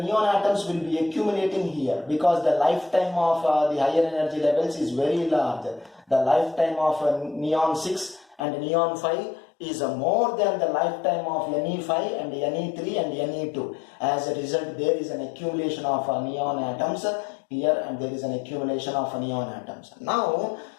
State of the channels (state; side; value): drops out; right; at 8.4 s